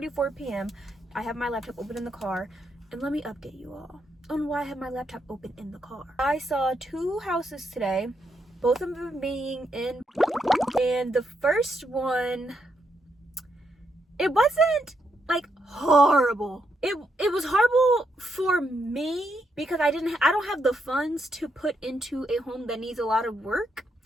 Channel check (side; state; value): both; normal; correlation 0.80